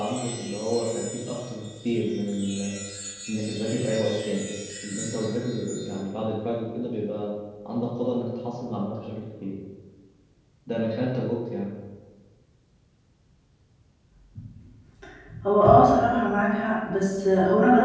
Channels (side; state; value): both; identical; correlation 1.00